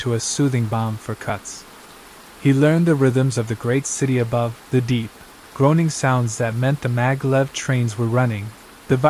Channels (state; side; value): identical; both; correlation 1.00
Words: a soothing balm for cuts. He learned the rhythms of the great city above, the deep, groaning sounds that meant the maglev trains were running, the